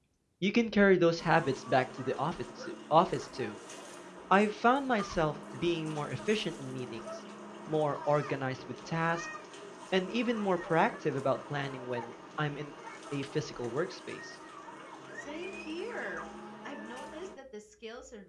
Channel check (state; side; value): identical; both; correlation 1.00